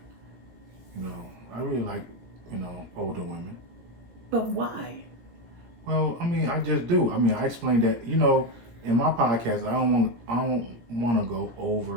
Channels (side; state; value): left; late; 17 ms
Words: I really like, older women. But why? Well, I mean, I just do. I mean, I explained that, in my podcast, I don't want to go